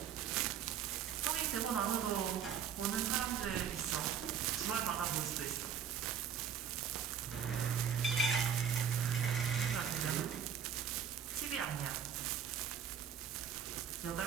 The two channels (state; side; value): quieter; left; 8.1 dB